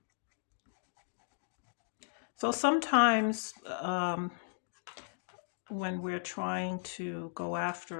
So sometimes when we're trying to go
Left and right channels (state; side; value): silent; right; digital silence